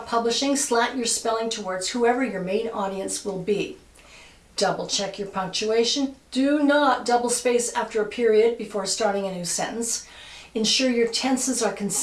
slant your spelling towards whoever your main audience will be. Double check your punctuation. Do not double space after a period before starting a new sentence. Ensure your tenses are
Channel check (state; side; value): identical; both; correlation 1.00